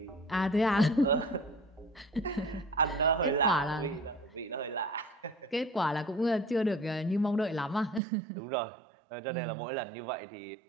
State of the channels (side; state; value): left; drops out; at 8.0 s